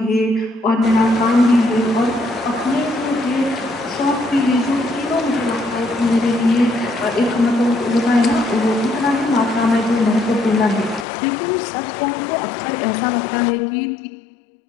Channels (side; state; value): right; drops out; at 11.1 s